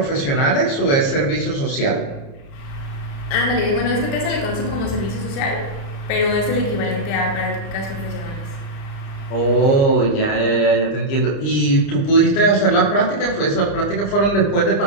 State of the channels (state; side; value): late; right; 29 ms